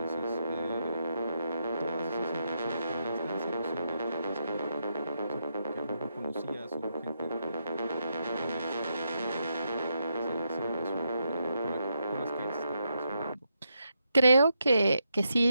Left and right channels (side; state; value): both; inverted; correlation -0.82